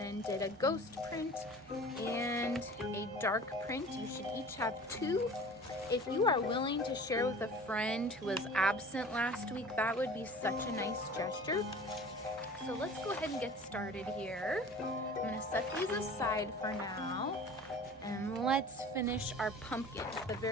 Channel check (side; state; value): both; normal; correlation 0.42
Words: did a ghost print and a dark print. You should each have 2. If you are willing to share with a friend who was absent last week, that would be such a nice gesture. So let's go ahead and get started here. I'm gonna set these aside for now, and let's finish our pumpkin. The